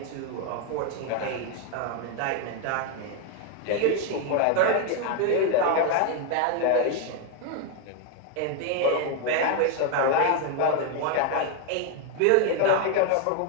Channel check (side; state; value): both; different; correlation 0.01